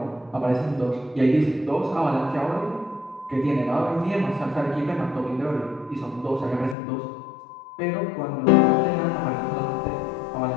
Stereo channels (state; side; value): drops out; right; at 6.8 s